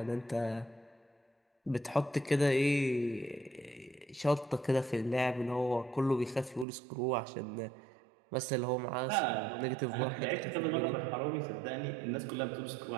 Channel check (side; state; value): left; drops out; at 6.7 s